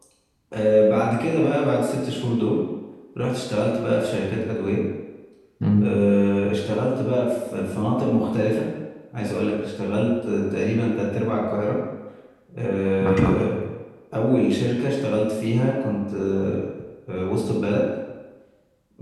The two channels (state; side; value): identical; both; correlation 1.00